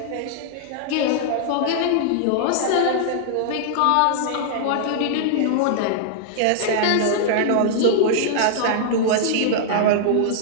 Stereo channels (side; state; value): both; different; correlation -0.01